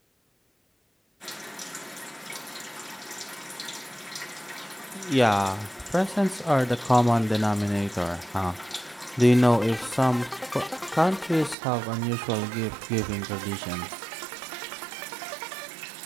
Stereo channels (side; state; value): left; drops out; at 11.6 s